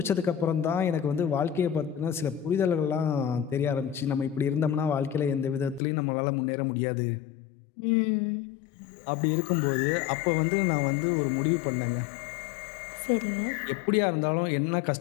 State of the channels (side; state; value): right; drops out; at 5.8 s